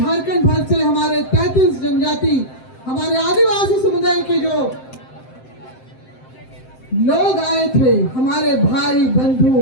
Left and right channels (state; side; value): late; right; 7.7 ms